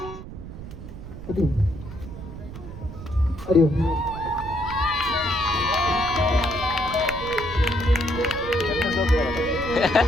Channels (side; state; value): right; noise; rumble, 12 dB below the sound